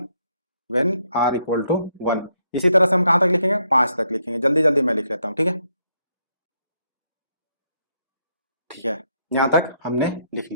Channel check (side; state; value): both; inverted; correlation -0.75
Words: व्हेन r इक्वल टू 1। इसी तरह से हम कहां तक लिखेंगे, 5 तक लिखेंगे, जल्दी जल्दी मैं लिख लेता हूं, ठीक है, ठीक है, यहां तक हमने लिख